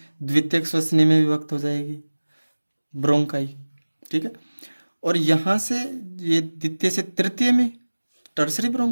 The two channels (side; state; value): both; inverted; correlation -1.00